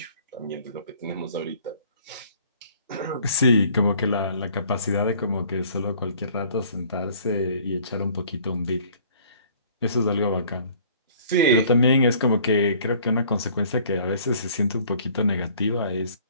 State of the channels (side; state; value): both; inverted; correlation -0.54